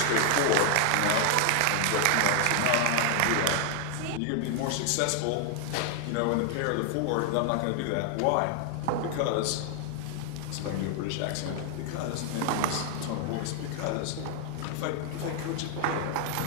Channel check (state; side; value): different; both; correlation 0.00